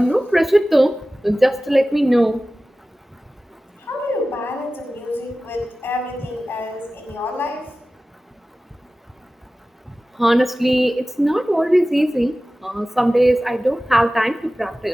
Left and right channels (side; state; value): both; normal; correlation 0.96